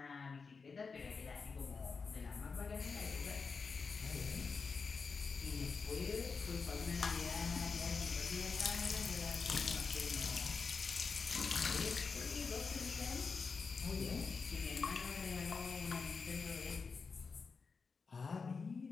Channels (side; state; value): right; quieter; 4.9 dB